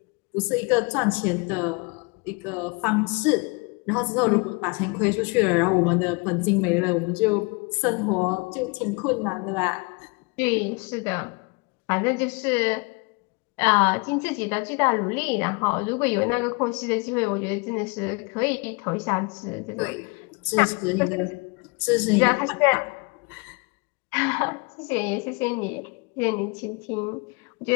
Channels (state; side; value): quieter; right; 29.8 dB